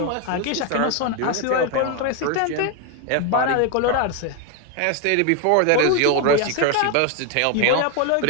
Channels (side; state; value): both; different; correlation 0.01